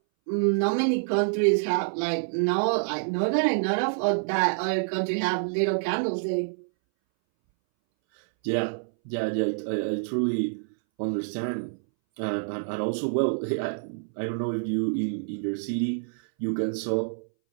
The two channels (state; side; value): silent; left; 60 dB below the other